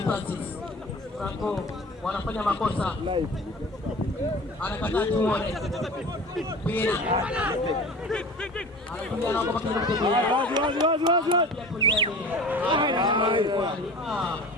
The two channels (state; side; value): normal; both; correlation 0.38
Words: Franco wanafanya makosa. Anakataa tuone. Pina. Anakuja na kwa kijana mtu.